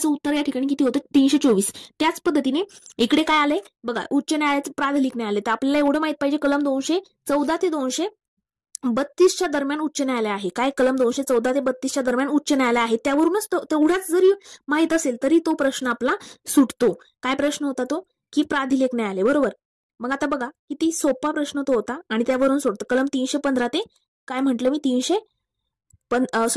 उत्तर या ठिकाणी किती होतं? 324. त्याच पद्धतीने इकडे काय आलंय बघा, उच्च न्यायालयाचं प्राधिलिक न्यायालय. तर आपल्याला एवढं माहित पाहिजे कलम 214 ते 232च्या दरम्यान उच्च न्यायालय आहे. काय? कलम 214 ते 32च्या दरम्यान उच्च न्यायालय आहे. त्यावरूनच तेवढाच जरी माहित असेल तरी तो प्रश्न आपला सुटतो. काय प्रश्न होता तो? की प्राधिलेख न्यायालय, बरोबर. मग आता बघा किती सोपा प्रश्न तो होता आणि त्यावरून सोडतो. कलम 315 ते काय म्हटलं मी?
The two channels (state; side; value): identical; both; correlation 1.00